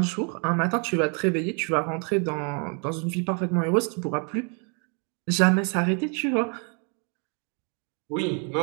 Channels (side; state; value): left; quieter; 37.8 dB